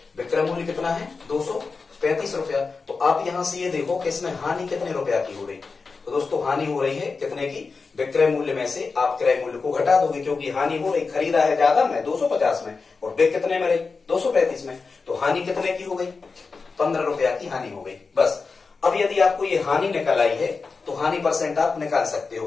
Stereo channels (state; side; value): quieter; right; 4.5 dB